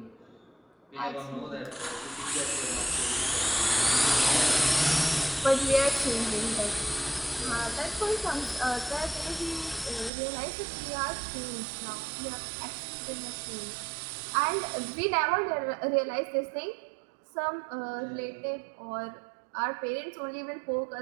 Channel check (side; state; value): left; drops out; at 10.1 s